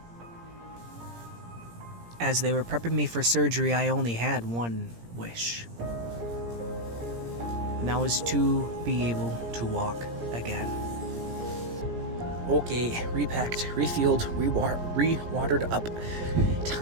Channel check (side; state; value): left; late; 17 ms